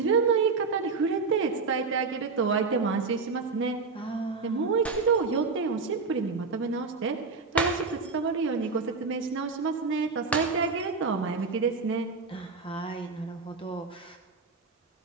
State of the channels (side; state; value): left; quieter; 4.5 dB